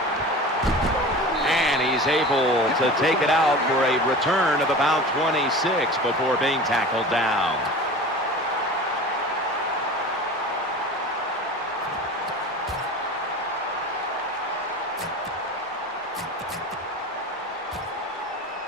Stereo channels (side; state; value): both; normal; correlation 0.35